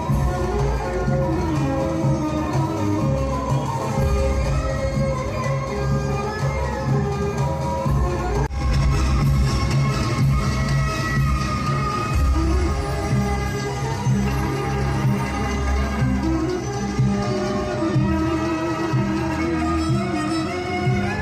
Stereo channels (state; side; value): identical; both; correlation 1.00